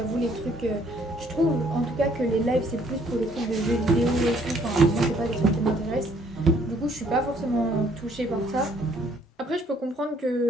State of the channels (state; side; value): normal; both; correlation 0.63